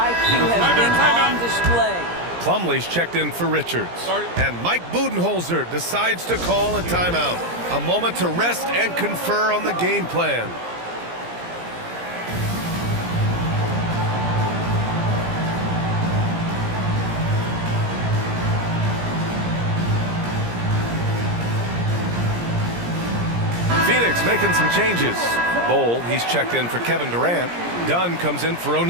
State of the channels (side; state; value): left; late; 17 ms